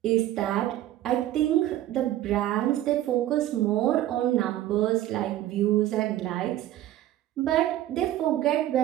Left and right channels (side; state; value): left; quieter; 13.6 dB